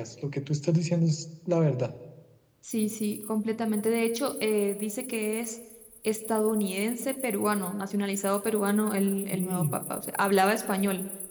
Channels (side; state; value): both; identical; correlation 1.00